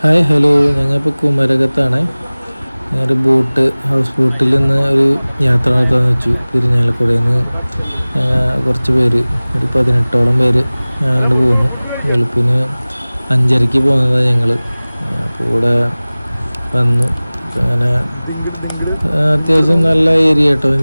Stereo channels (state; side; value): inverted; both; correlation -0.99